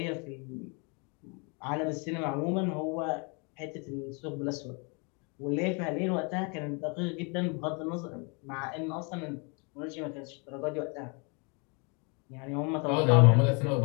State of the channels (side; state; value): right; quieter; 33.6 dB